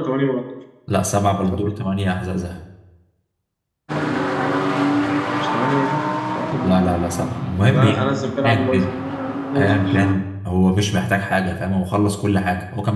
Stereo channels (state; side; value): identical; both; correlation 1.00